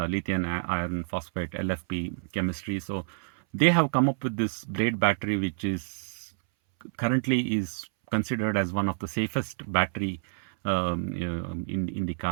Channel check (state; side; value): silent; left; 59 dB below the other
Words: iron phosphate LFP chemistry. So they have come up with this blade battery, which is currently is considered as one of the safest battery in the